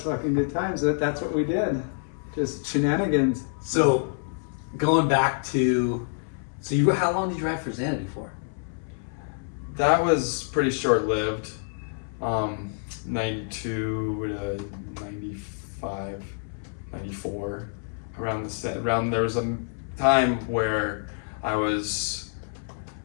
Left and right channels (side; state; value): right; silent; 60 dB below the other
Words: fucking good times. That's what we did. Just shenanigans. So, going back to, how long did you ride for Xanadu for? That was pretty short-lived. 92 to 95, 94. There was a time where I was